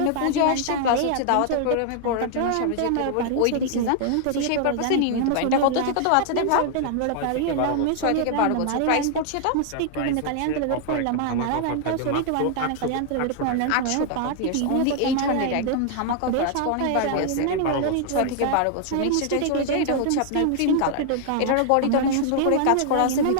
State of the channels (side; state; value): both; different; correlation 0.00